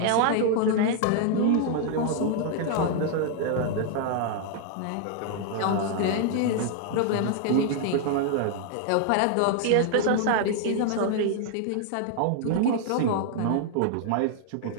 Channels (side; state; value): both; different; correlation 0.00